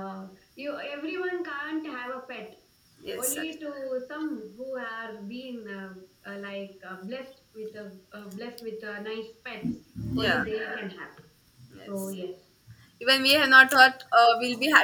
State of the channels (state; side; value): identical; both; correlation 1.00